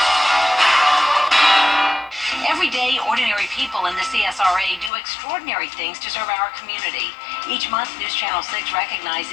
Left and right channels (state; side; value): drops out; right; at 4.9 s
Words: Every day, ordinary people in the CSRA do extraordinary things to serve our community. Each month, News Channel 6